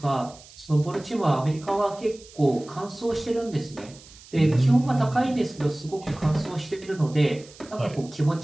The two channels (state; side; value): noise; right; hiss, 21 dB below the sound